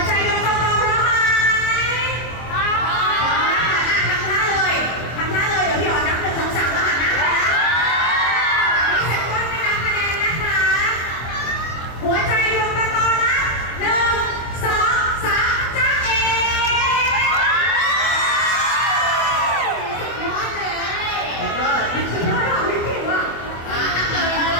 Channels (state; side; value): late; right; 24 ms